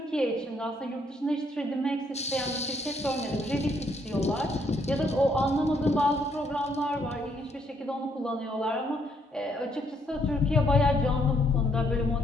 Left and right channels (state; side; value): normal; both; correlation 0.71